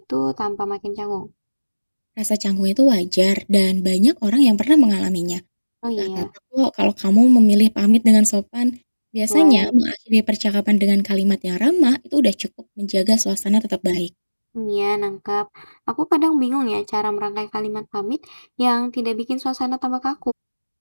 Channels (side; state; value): both; inverted; correlation -1.00